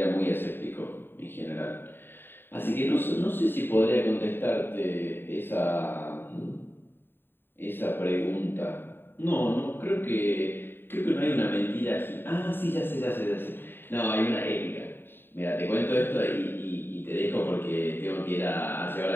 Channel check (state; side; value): late; right; 0.099 ms